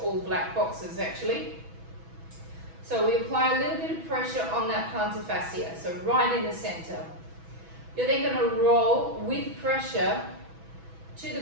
black boxes actually. So we apply a little bit of pressure on that plantar fascia, so right in the center. You're then going to roll with pressure to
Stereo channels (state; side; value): late; left; 6.1 ms